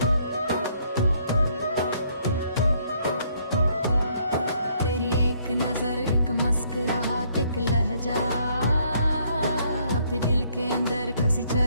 तेरी एक नजर, एक मुस्कुराहट, एक लहजा अपने दिल के अंदर किसी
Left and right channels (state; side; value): inverted; both; correlation -0.67